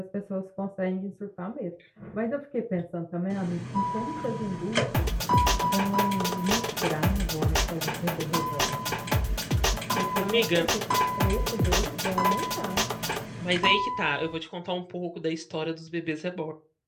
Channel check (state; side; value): identical; both; correlation 1.00